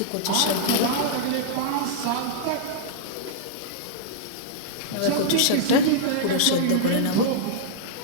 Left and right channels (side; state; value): both; different; correlation -0.02